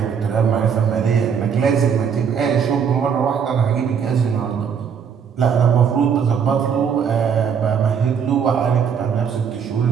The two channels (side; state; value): left; quieter; 7.1 dB